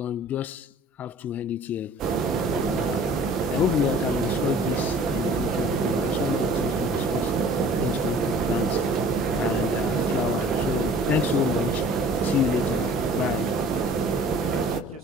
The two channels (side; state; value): both; normal; correlation 0.49